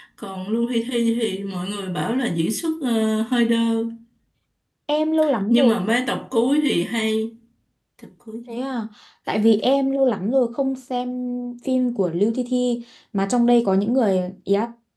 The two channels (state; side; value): identical; both; correlation 1.00